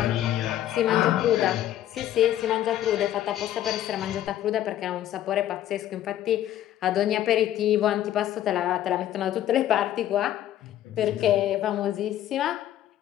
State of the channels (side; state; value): right; quieter; 12.4 dB